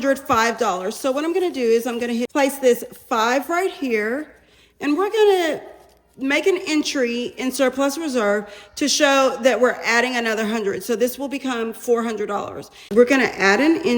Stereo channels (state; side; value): identical; both; correlation 1.00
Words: So what I'm gonna do is I'm gonna place this 5 right here, and we're gonna make an entry in surplus reserve to show that we're adding another 100. So this will become $400. We're gonna add an